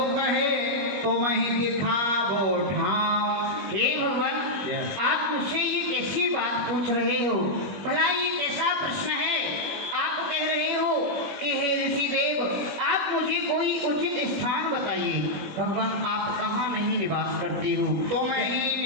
कहे तो वहीं दिखावो ठाव। हे भगवान, आप मुझसे ये कैसी बात पूछ रहे हो? भला ये कैसा प्रश्न है? आप कह रहे हो कि हे ऋषि देव, आप मुझे कोई उचित स्थान बताइए। भगवान, आप कहाँ नहीं निवास करते हो? तुम ही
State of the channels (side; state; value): left; late; 21 ms